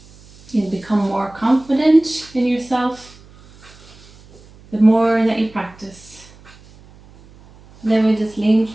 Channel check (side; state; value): right; noise; hum, 24 dB below the sound